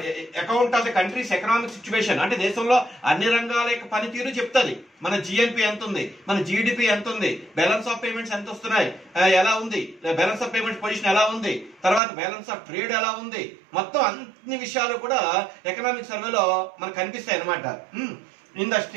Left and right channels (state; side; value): drops out; left; at 12.0 s